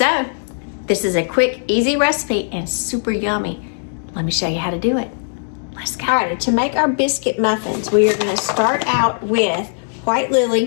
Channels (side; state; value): right; silent; digital silence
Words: this is a quick, easy recipe and super yummy. Let me show you how to do it. Let's go. All right, to make our biscuit muffins, we are going to start out with White